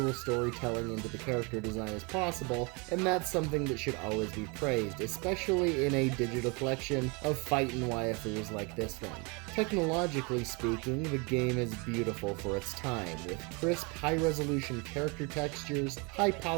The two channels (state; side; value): quieter; left; 30.2 dB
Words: storytelling into the character design as possible, and that's something that should always be praised, especially in a digital collection of fightin' waifus like this one. Technologically speaking, the game is beautiful for its time, with crisp, high-resolution character textures, high